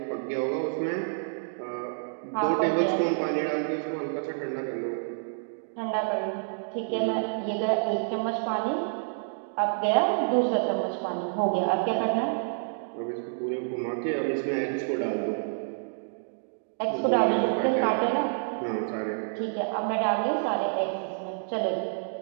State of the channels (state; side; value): silent; left; digital silence